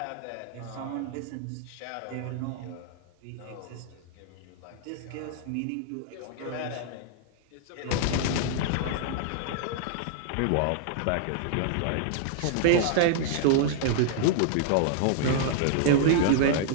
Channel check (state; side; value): different; both; correlation -0.01